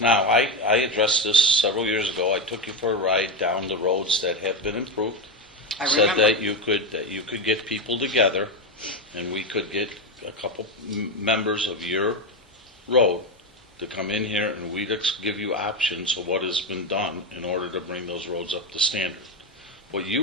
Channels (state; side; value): normal; both; correlation 0.12